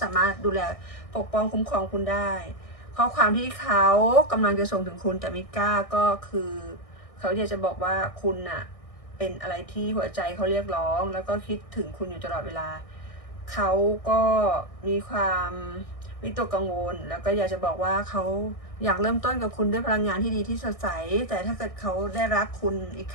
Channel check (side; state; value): right; late; 1.6 ms